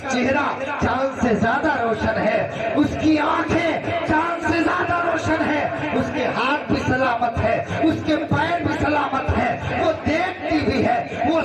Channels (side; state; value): both; identical; correlation 1.00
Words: چہرہ چاند سے زیادہ روشن ہے, اس کی آنکھیں چاند سے زیادہ روشن ہے, اس کے ہاتھ بھی سلامت ہے, اس کے پیر بھی سلامت ہے, وہ دیکھتی بھی ہے, وہ